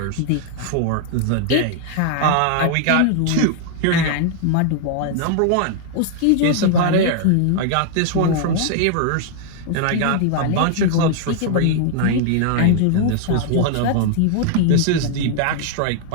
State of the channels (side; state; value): both; different; correlation 0.00